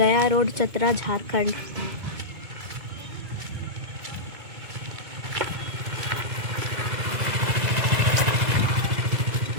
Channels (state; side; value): late; left; 2.3 ms